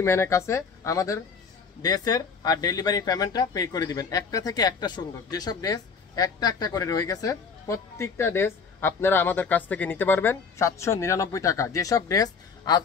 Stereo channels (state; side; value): quieter; right; 5.5 dB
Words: ম্যানের কাছে আমাদের ড্রেসের আর ডেলিভারি পেমেন্টটা পে করে দিবেন। একটা থেকে একটা সুন্দর, যেসব ড্রেস একটা একটা করে রয়ে গেছে প্রত্যেকটা ড্রেস আপনারা আমাদের কাছ থেকে নিতে পারবেন 799 টাকা। যেসব ড্রেস